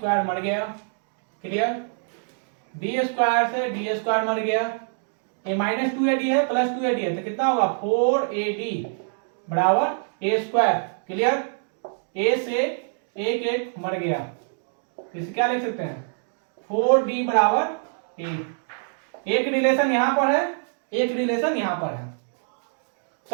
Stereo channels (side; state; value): left; silent; digital silence